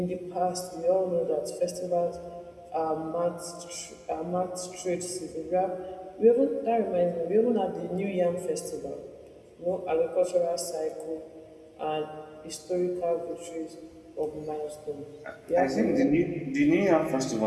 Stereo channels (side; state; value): both; identical; correlation 1.00